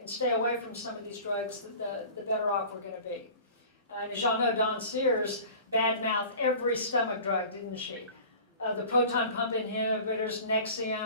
stay away from some of these drugs, the better off we're going to be. And as y'all know, Dawn Sears badmouthed every stomach drug, didn't she? The proton pump inhibitors,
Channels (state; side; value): inverted; both; correlation -0.41